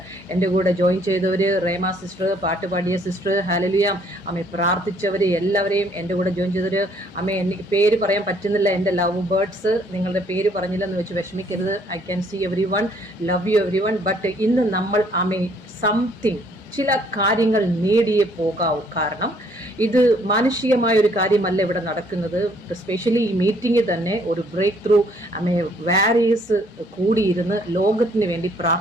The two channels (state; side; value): normal; both; correlation 0.64